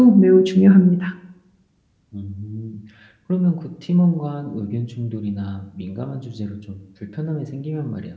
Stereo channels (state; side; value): identical; both; correlation 1.00